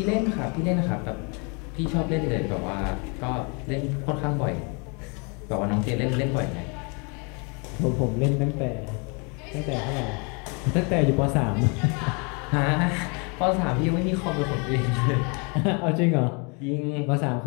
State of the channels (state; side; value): quieter; right; 33.5 dB